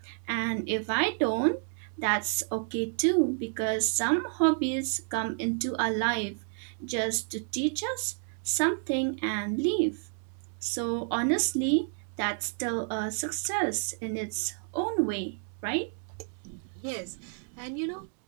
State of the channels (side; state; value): left; silent; 57 dB below the other